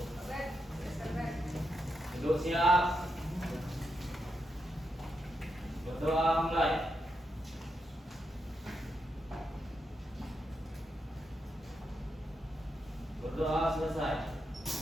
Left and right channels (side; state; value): both; normal; correlation 0.84